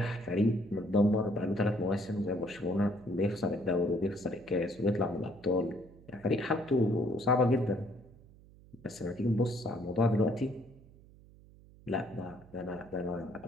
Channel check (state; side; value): noise; right; hum, 23 dB below the sound